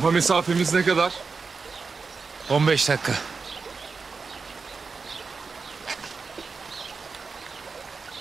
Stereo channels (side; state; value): left; quieter; 4.7 dB